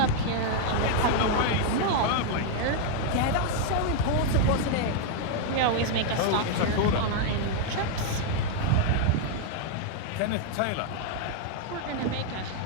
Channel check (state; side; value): different; both; correlation 0.00